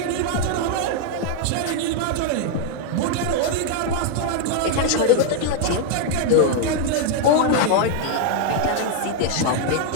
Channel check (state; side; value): different; both; correlation 0.00